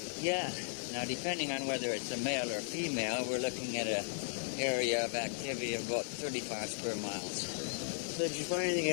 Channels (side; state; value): right; silent; digital silence